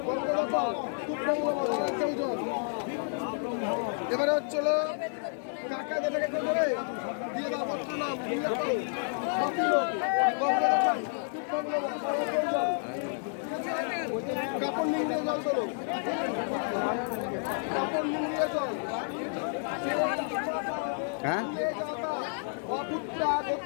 রঙ্গ রকম তুপ্পং নামা কেউ দাও এবারে হচ্ছিল কাকা যেটাকে করে দিয়ে দাও পত্র নাম উল্লেখ করো সব দিল রঙ্গ রকম তুপ্পং নামা কেউ দাও কাপড় নিংড়িয়ে জল তোলো কাপড় নিংড়িয়ে জল হ্যাঁ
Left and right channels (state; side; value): silent; right; 58 dB below the other